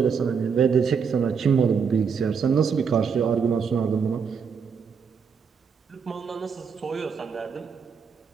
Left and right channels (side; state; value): left; quieter; 6.2 dB